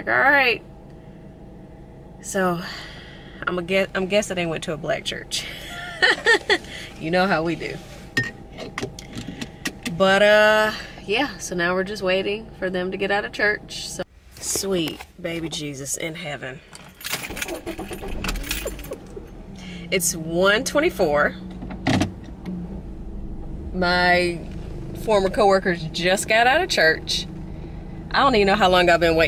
all right. So I'm guessing they went to a black church. You know how we do. But yeah, so now we're just waiting for them to get out of church. So sweet baby Jesus in heaven. It's 1:24. My former coworkers just got out of church. I don't even know how long I've been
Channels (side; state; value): both; identical; correlation 1.00